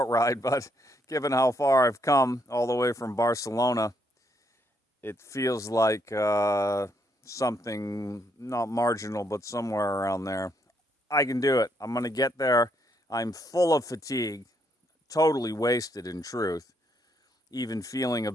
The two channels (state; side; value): normal; both; correlation 0.74